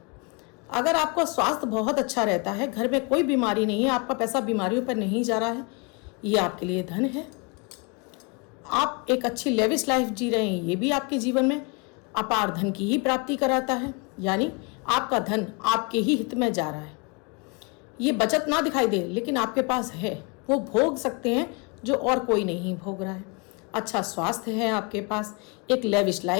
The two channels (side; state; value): right; quieter; 31.4 dB